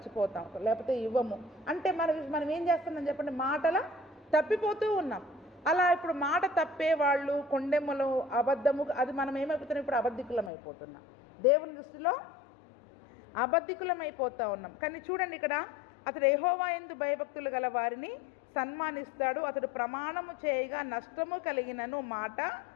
లేకపోతే ఇవ్వము. అంటే మనం ఏం చేస్తున్నాం చెప్పండి? మాటల తప్పిపోతూ ఉన్నాం. అలా ఇప్పుడు మాట తప్పే వాళ్ళు, కొండెమ్మలు, అబద్ధము, అది మనం ఏమైపోతున్నాం? ఇప్పుడు అబద్ధికులం అయిపోతున్నాం. దేవుని దృష్టిలో అబద్ధికులం అయిపోతూ ఉన్నాం. కానీ చూడండి, ఇక్కడ అతడు యెహోవా యందు భయభక్తులు గల వారిని సన్మానిస్తాడు, అతడు ప్రమాణము చేయగా నష్టము కలిగినను మాట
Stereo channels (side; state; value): right; drops out; at 10.5 s